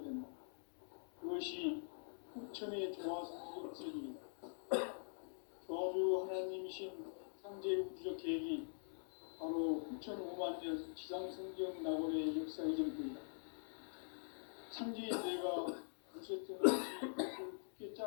된다. 그것이 후천의 조화성적 세계이다. 조화주 하나님이신 상제의 우주적 계획이 바로 후천 5만 년 지상성경 낙원의 역사 이전부이다. 상제의 내가 무쇠등 없이 것을 굳게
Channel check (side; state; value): right; silent; digital silence